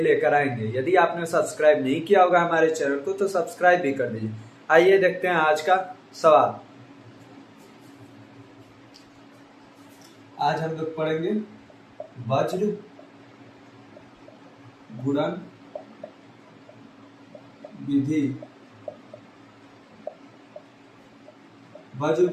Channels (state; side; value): identical; both; correlation 1.00